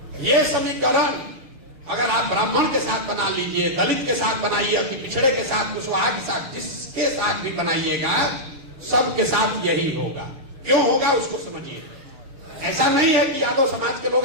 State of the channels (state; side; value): late; left; 6.7 ms